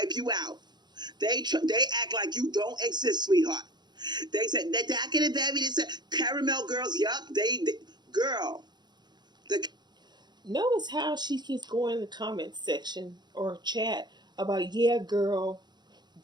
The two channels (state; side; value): late; left; 0.21 ms